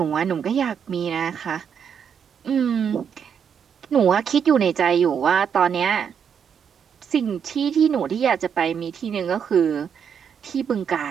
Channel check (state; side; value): quieter; left; 7.5 dB